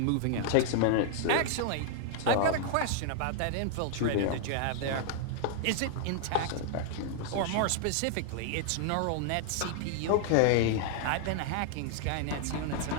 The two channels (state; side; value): different; both; correlation -0.01